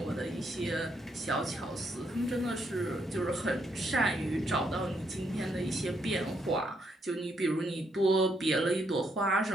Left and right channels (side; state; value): both; normal; correlation 0.75